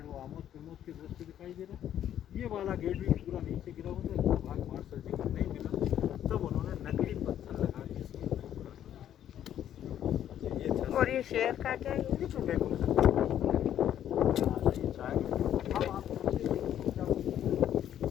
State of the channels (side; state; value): right; quieter; 10.7 dB